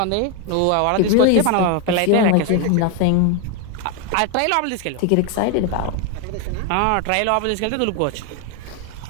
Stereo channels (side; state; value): both; different; correlation 0.01